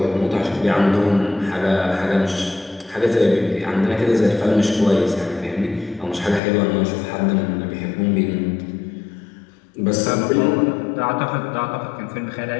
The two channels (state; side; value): drops out; right; at 6.4 s